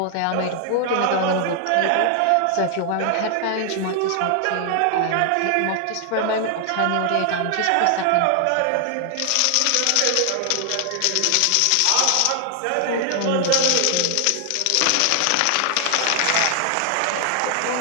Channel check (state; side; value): different; both; correlation 0.00